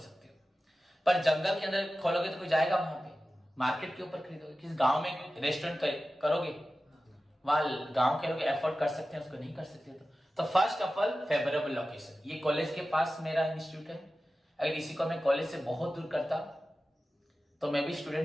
हो, पर जंगल के अंदर खोलोगे तो कोई जाएगा वहां पे? मार्केट के ऊपर खरीदोगे? किस गांव में रेस्टोरेंट करोगे? वहां गांव के लोग एफोर्ड कर सकते हैं, उसको नहीं कर सकते। तो first of all favourable location, ये कॉलेज के पास मेरा इंस्टीट्यूट है, अगर इसी को मैं कॉलेज से बहुत दूर करता तो मैं भी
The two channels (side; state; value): both; normal; correlation 0.95